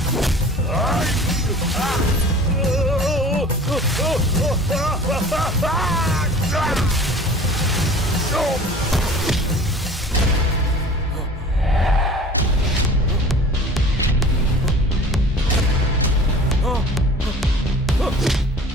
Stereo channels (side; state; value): both; normal; correlation 0.44